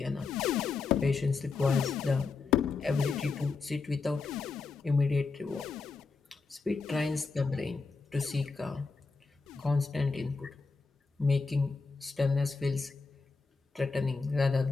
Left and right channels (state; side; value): quieter; right; 4.4 dB